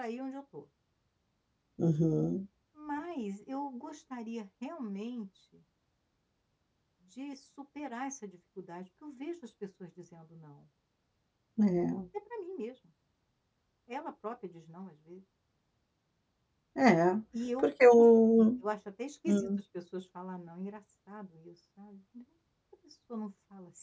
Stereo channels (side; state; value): both; identical; correlation 1.00